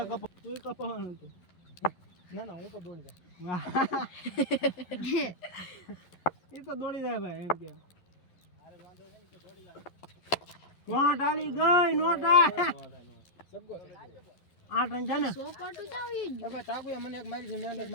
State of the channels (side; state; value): right; late; 11 ms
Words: કપ તું કપવાનું તો ના ના હું તો દોડી જાય એ તો દોડી જાય ભાઈ એમ કે નોટ આલી ગઈ નોટ સગો 8 રન છે ને સો પાટું જાવી હવે તાગુએ મને એક મારી છે મેં એક